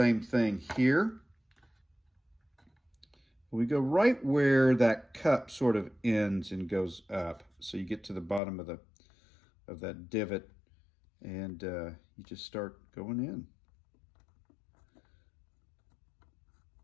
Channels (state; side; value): drops out; right; at 8.4 s